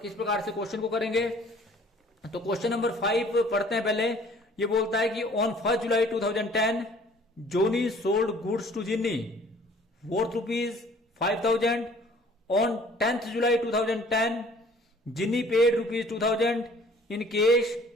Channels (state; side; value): normal; both; correlation 0.54